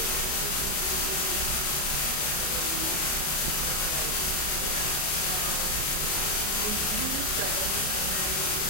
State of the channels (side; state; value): right; late; 34 ms